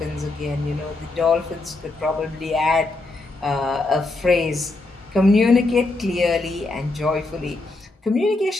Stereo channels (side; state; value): right; quieter; 3.1 dB